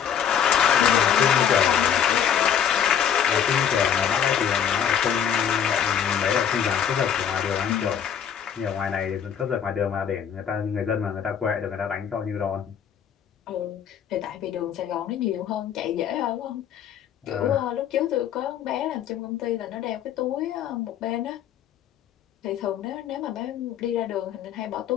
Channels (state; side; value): quieter; right; 8.6 dB